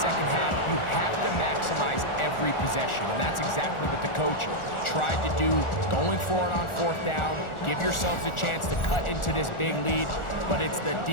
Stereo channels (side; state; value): right; late; 1.4 ms